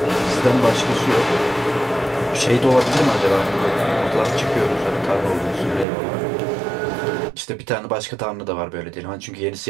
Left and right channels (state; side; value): drops out; left; at 5.9 s